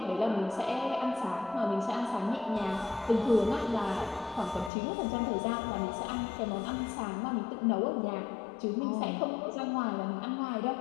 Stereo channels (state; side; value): drops out; right; at 4.7 s